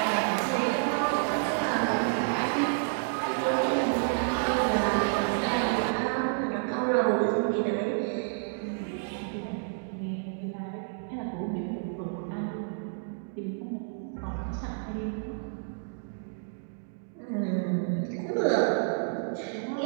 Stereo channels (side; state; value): left; silent; digital silence